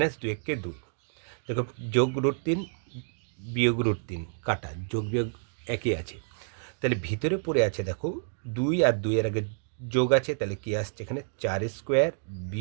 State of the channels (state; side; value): silent; left; digital silence